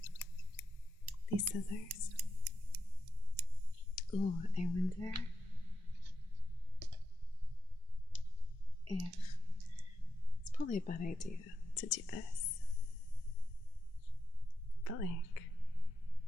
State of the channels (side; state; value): both; normal; correlation 0.87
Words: These scissors. Ooh, I wonder if it's probably a bad idea to do this. But like,